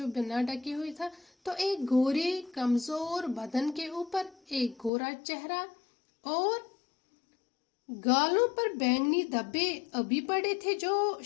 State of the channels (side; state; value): right; drops out; at 4.9 s